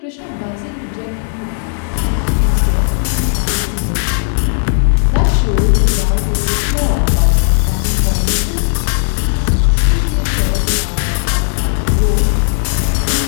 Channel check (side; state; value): right; silent; digital silence